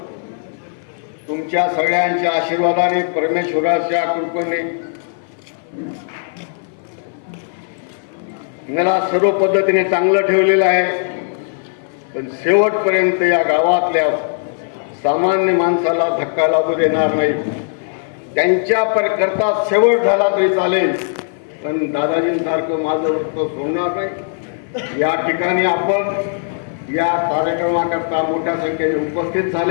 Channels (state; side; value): silent; right; 57 dB below the other